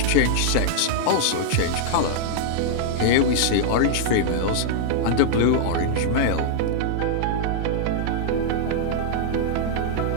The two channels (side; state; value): both; different; correlation -0.01